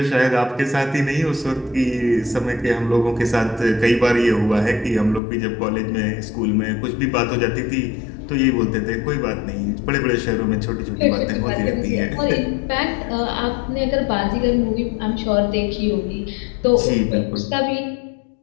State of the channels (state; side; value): drops out; right; at 5.2 s